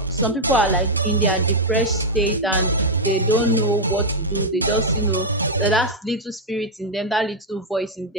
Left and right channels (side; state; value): both; normal; correlation -0.02